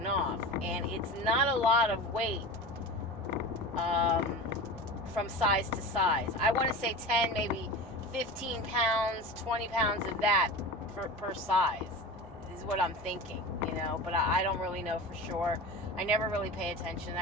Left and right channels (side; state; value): both; normal; correlation 0.31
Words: off. And it's not a lot of weight from size to size. I want to say 10, maybe 15 pounds, 20 pounds of that per size is what I'm thinking, you know. But I don't really know for sure. I never really pay attention to